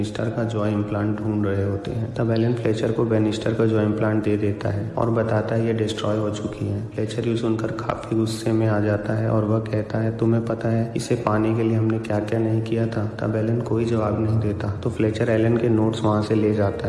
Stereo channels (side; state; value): both; identical; correlation 1.00